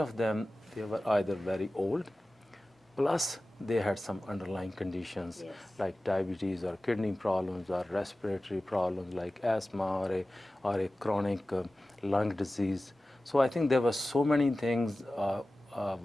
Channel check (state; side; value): normal; both; correlation 0.96